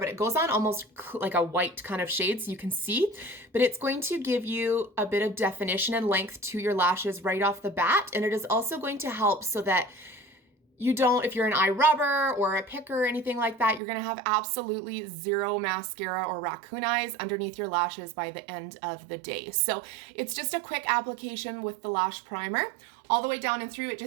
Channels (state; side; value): drops out; left; at 13.8 s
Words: it goes on almost like a white kind of shade so you can see. But it's going to give you a bit of definition and length to your lashes right off the bat. And it is also going to help so that you don't, if you're an eye rubber or a picker or anything like that, you're gonna have absolutely zero mascara or raccoon eyes underneath your lashes by the end of the day. So it's just a quick application with the lash primer. All the way down and through, it